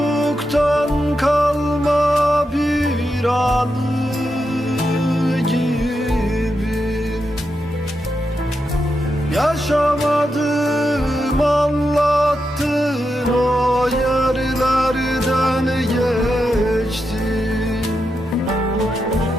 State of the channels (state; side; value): normal; both; correlation 0.86